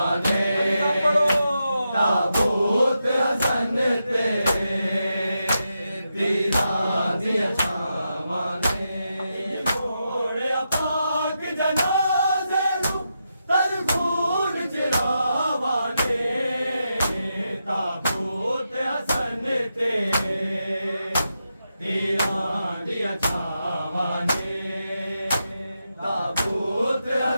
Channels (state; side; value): inverted; both; correlation -0.86